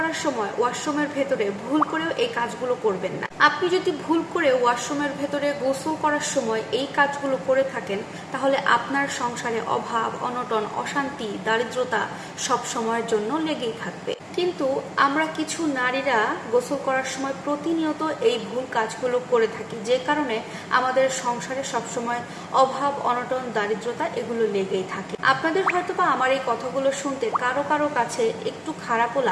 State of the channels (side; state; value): both; identical; correlation 1.00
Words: সময় ওয়াশরুমের ভেতরে ভুল করেও এই কাজগুলো করবেন না। আপনি যদি ভুল করে ওয়াশরুমের ভেতরে গোসল করার সময় এই কাজগুলো করে থাকেন, তাহলে আপনার সংসারে অভাব, অনটন, অশান্তি, দারিদ্রতা সব সময়ের জন্য লেগেই থাকবে। কিন্তু আমরা কিছু নারীরা গোসল করার সময় প্রতিনিয়ত এই ভুল কাজগুলো করে থাকি, যে কারণে আমাদের সংসারে সবসময় অভাব, অনটন, দারিদ্রতা এগুলো লেগেই থাকে। আপনাদের হয়তোবা আমার এই কথাগুলো শুনতে কারো কারো কাছে একটু খারাপও